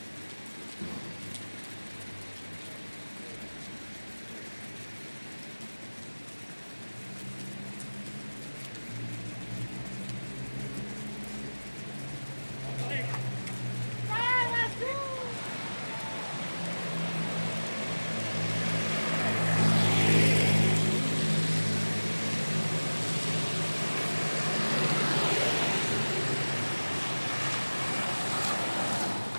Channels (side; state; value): both; inverted; correlation -1.00